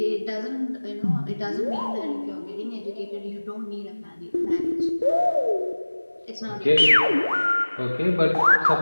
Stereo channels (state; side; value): inverted; both; correlation -1.00